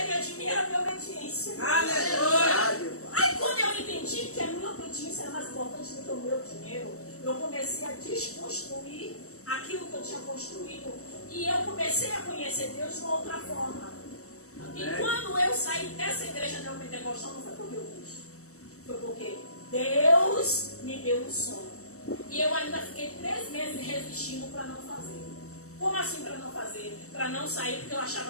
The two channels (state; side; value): late; right; 0.64 ms